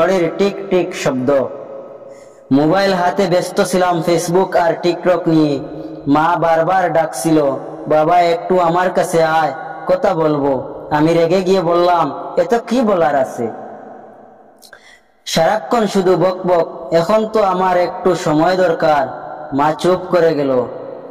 টিক টিক শব্দ। মোবাইল হাতে ব্যস্ত ছিলাম ফেসবুক আর টিকটক নিয়ে। মা বারবার ডাকছিল, বাবা একটু আমার কাছে আয়, কথা বলবো। আমি রেগে গিয়ে বললাম, এত কি বলার আছে? সারাক্ষণ শুধু বক বক, এখন তো আমার একটু সময় দরকার। মা চুপ করে গেল।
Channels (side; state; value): both; identical; correlation 1.00